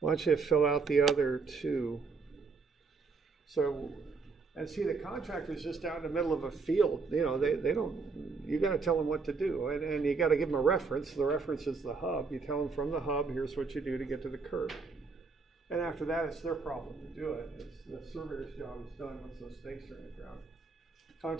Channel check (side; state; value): left; quieter; 4.5 dB